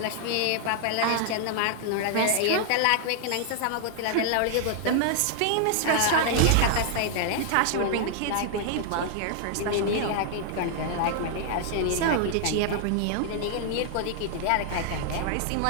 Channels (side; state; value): both; different; correlation 0.00